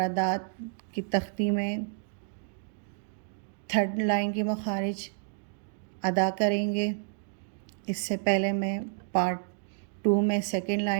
کی تختی میں 3rd لائن کے مخارج ادا کریں گے۔ اس سے پہلے میں پارٹ 2 میں 2nd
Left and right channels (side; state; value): left; silent; 58 dB below the other